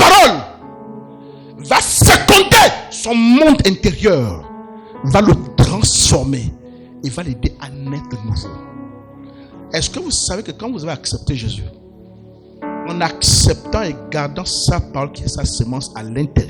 va féconder son monde intérieur, va le transformer et va l'aider à naître de nouveau. Est-ce que vous savez que quand vous avez accepté Jésus, en acceptant et gardant sa parole qui est sa semence à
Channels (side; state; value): both; identical; correlation 1.00